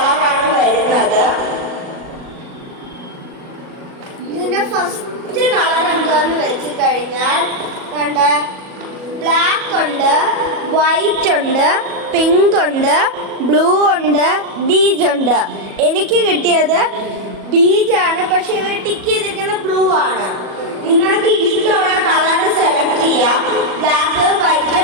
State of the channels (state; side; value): late; left; 37 ms